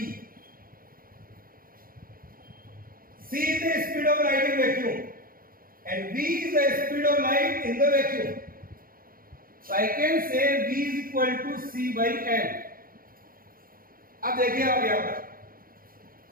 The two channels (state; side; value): late; left; 0.42 ms